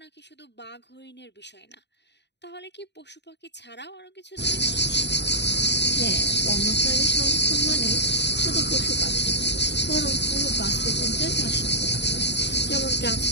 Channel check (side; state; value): right; late; 0.50 ms